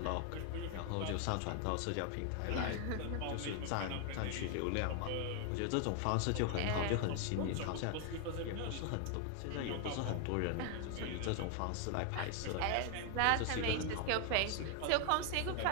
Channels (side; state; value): both; different; correlation 0.00